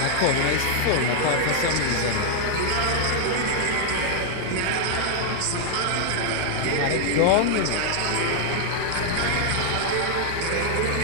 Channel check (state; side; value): different; both; correlation 0.00